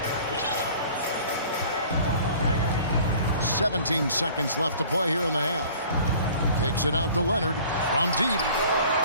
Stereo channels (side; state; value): both; inverted; correlation -0.49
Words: 17 seconds left to play here in the half. Kicks it out to Leonard from deep.